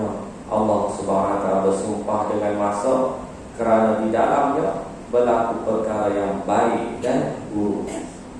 Allah Subhanahu wa taala bersumpah dengan masa kerana di dalamnya berlaku perkara yang baik dan buruk,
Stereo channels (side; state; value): both; identical; correlation 1.00